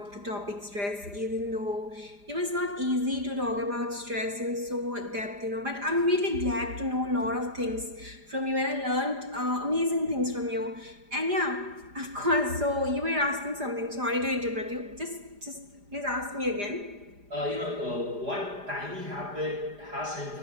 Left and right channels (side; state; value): left; late; 4.9 ms